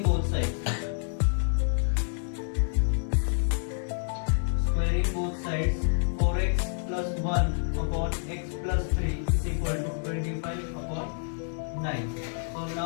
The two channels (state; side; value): silent; right; digital silence